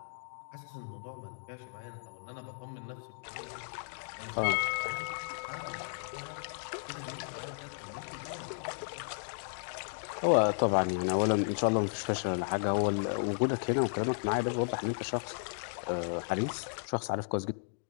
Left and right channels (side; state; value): right; silent; digital silence